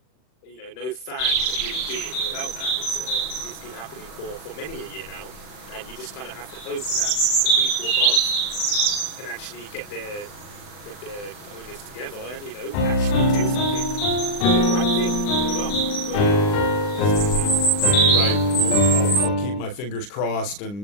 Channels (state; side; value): late; right; 39 ms